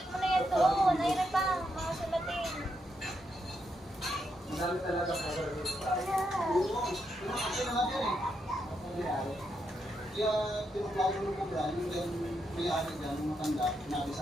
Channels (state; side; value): normal; both; correlation 0.81